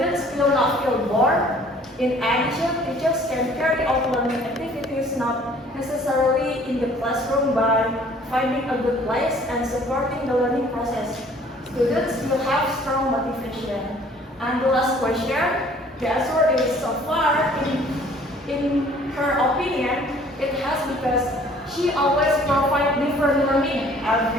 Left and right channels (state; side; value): normal; both; correlation 0.55